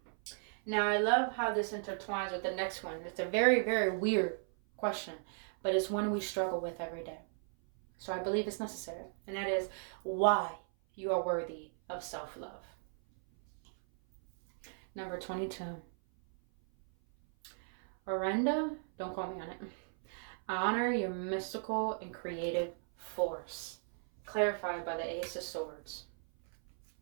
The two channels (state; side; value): silent; left; 54 dB below the other